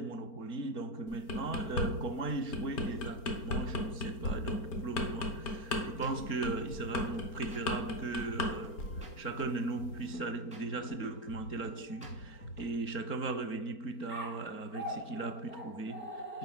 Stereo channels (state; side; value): late; right; 4.4 ms